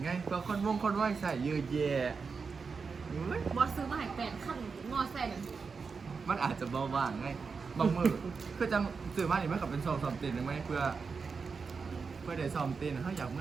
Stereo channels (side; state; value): left; quieter; 5.1 dB